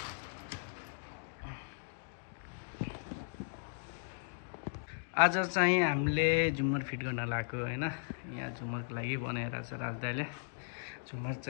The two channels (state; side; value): silent; right; digital silence